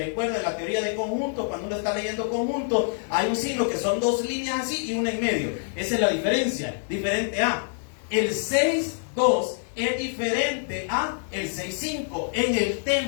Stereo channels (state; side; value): silent; right; digital silence